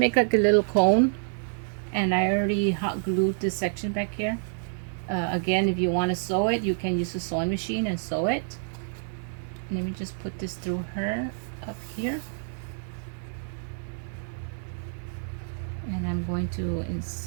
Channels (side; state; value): left; silent; 59 dB below the other